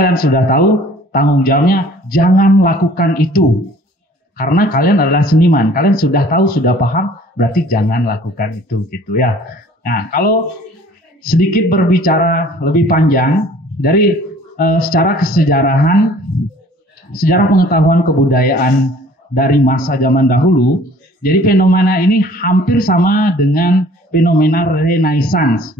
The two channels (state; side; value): normal; both; correlation 0.52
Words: sudah tahu, tanggung jawabnya jangan lakukan itu. Karena kalian adalah seniman, kalian sudah tahu, sudah paham, berarti jangan lakukan itu gitu ya. Nah, kalau sedikit berbicara lebih panjang dari secara kesejarahan, sejarah pengetahuan kebudayaan dari masa zaman dahulu, jadi fenomena ini hampir sama dengan fenomena Renaissance